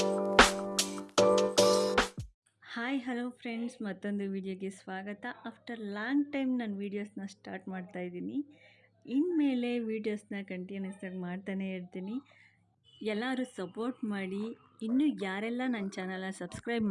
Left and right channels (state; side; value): identical; both; correlation 1.00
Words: ಹಾಯ್ ಹಲೋ ಫ್ರೆಂಡ್ಸ್, ಮತ್ತೊಂದು ವಿಡಿಯೋಗೆ ಸ್ವಾಗತ. ಆಫ್ಟರ್ ಲಾಂಗ್ ಟೈಮ್ ನಾನು ವೀಡಿಯೋಸ್ನ ಸ್ಟಾರ್ಟ್ ಮಾಡ್ತಾಯಿದ್ದೀನಿ. ಇನ್ಮೇಲೆ ವೀಡಿಯೋಸ್ನ ಕಂಟಿನ್ಯೂಸ್ ಆಗಿ ಮಾಡ್ತಾನೆ ಇರ್ತೀನಿ. ಎಲ್ಲರೂ ಸಪೋರ್ಟ್ ಮಾಡಿ. ಇನ್ನೂ ಯಾರೆಲ್ಲ ನನ್ನ ಚಾನಲ್ನ ಸಬ್ಸ್ಕ್ರೈಬ್